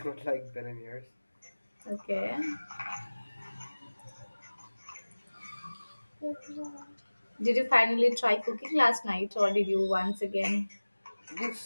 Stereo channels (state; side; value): inverted; both; correlation -1.00